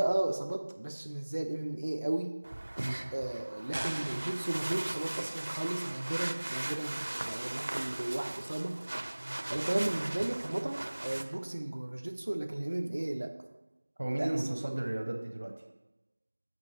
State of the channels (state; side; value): inverted; both; correlation -1.00